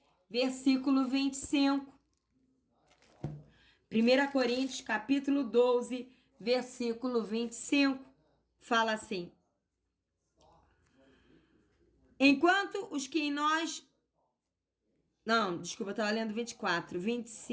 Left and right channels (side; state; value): both; identical; correlation 1.00